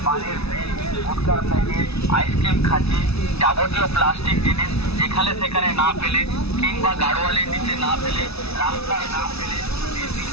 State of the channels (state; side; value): late; right; 0.79 ms